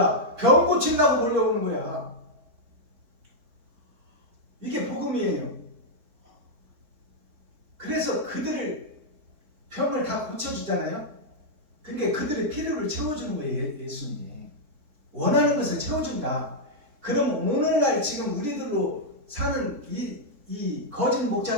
병 고친다고 몰려오는 거야. 이게 복음이에요. 그래서 그들을 병을 다 고쳐주잖아요. 그러니까 그들의 필요를 채워주는 거예요. 예수님이 원하는 것을 채워준다. 그럼 오늘날 지금 우리들로 사는 이 거짓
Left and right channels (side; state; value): left; late; 4.0 ms